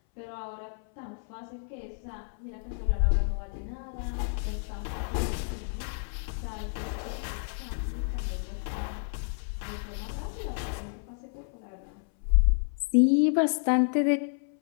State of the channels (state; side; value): silent; right; 58 dB below the other